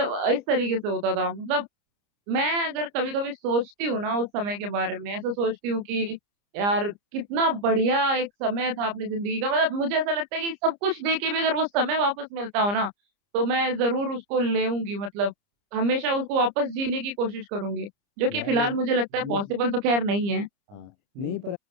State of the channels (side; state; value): left; late; 30 ms